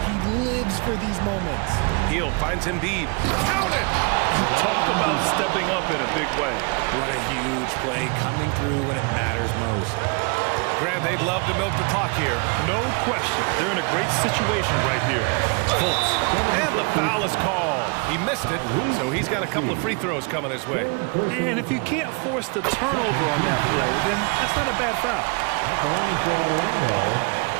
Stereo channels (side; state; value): left; quieter; 33.3 dB